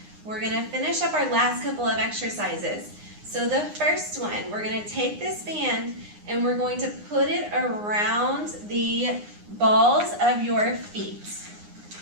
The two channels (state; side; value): late; left; 9.7 ms